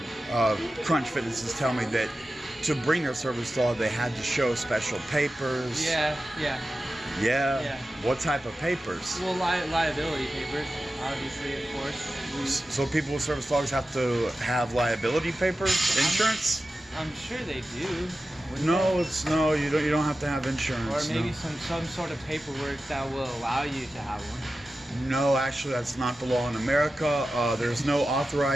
Crunch Fitnesses tell me that to bring their service dog, they had to show special papers. Yeah. Yeah? What type of papers? Well, liability papers, obviously, of course. So people with service dogs have to have liability papers, insurance? I'm sure they do. No, you don't have to have insurance. Or maybe some sort of paperwork that will allow you to have one. No, actually, that's not the law in America. There's no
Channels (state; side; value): normal; both; correlation 0.93